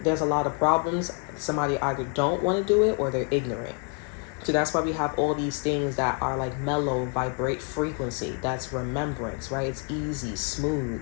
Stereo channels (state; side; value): quieter; right; 37.2 dB